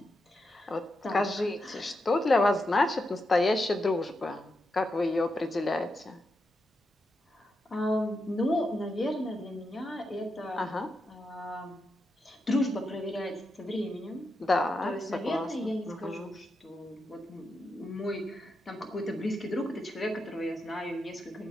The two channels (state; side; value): normal; both; correlation 0.86